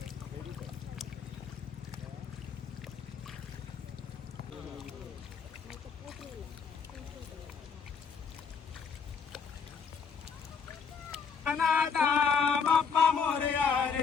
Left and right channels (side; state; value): right; quieter; 6.0 dB